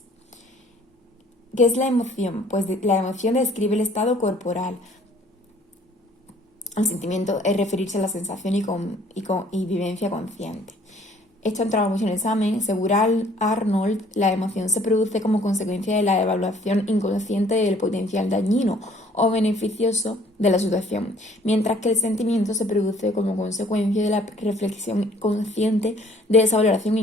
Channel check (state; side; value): normal; both; correlation 0.58